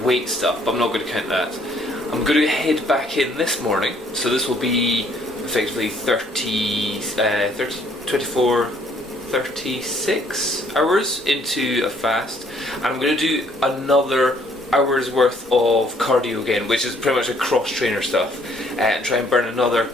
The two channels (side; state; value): both; normal; correlation 0.63